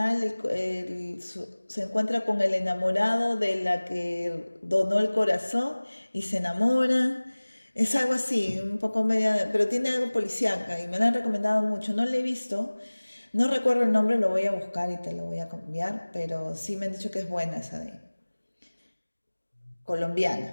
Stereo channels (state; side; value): inverted; both; correlation -1.00